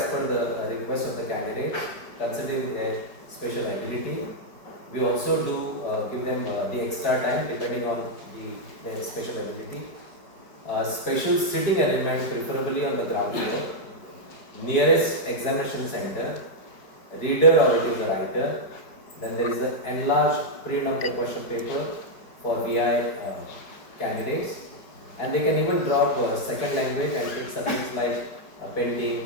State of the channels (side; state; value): right; late; 5.0 ms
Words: per the request of the candidate, considering their special ability. We also do give them the extra time depending on their special ability. Special sitting arrangement, preferably on the ground floor. Nearest examination center. Reader or it is a writer. Then there is the enlarged print of the question paper for VI candidates. And they can even drop second language and take subjects like painting,